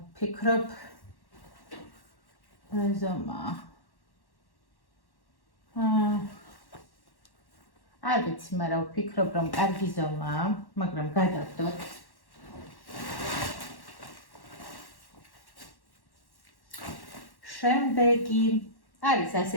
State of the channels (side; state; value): right; late; 1.1 ms